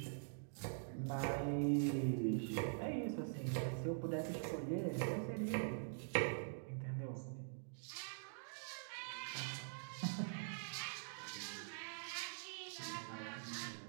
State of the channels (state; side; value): silent; left; digital silence